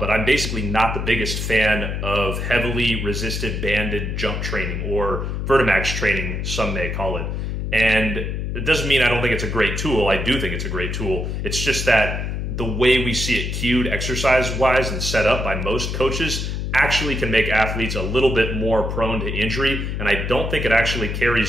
I'm basically not the biggest fan of heavily resisted banded jump training, or Vertimax training, some may call it. And it doesn't mean I don't think it's a great tool. I do think it's a great tool. It's just that the way we see it cued exercise-wise and set up by most coaches actually can make athletes a little bit more prone to injury, and I don't think it actually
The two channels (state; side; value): noise; left; hum, 3 dB below the sound